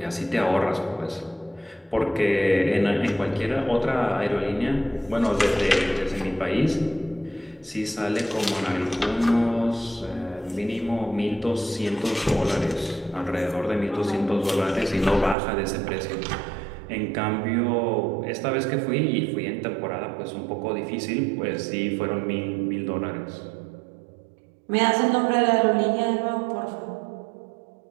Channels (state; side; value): drops out; left; at 15.4 s